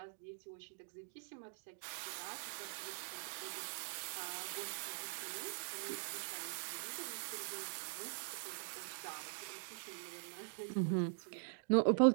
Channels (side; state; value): left; silent; digital silence